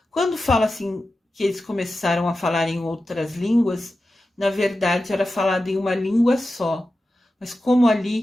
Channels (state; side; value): normal; both; correlation 0.92